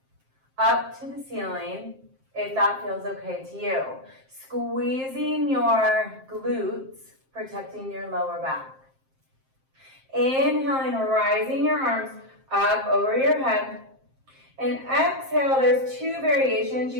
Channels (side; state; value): left; late; 7.6 ms